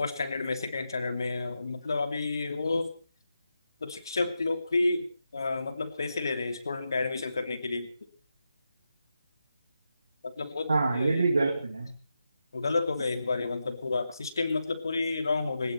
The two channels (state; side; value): inverted; both; correlation -0.87